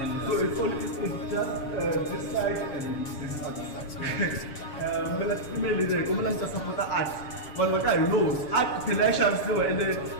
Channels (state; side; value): late; right; 7.5 ms